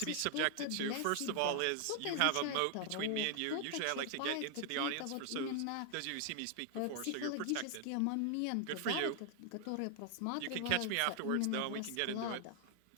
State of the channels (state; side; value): different; both; correlation 0.00